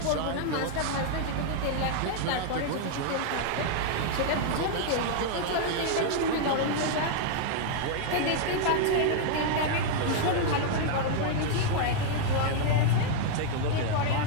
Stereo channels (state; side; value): different; both; correlation 0.00